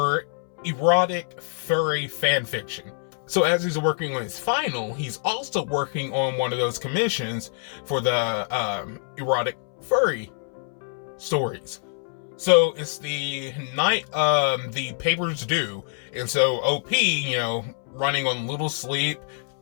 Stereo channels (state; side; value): silent; right; 62 dB below the other